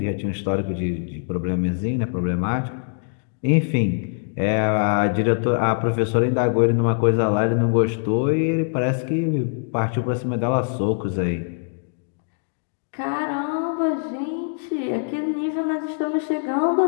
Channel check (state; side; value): silent; right; digital silence